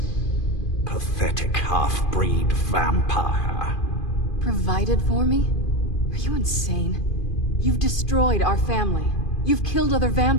pathetic half-breed vampire. Provided for me? Are you insane? You've destroyed our family. You've killed other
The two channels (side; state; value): right; late; 2.4 ms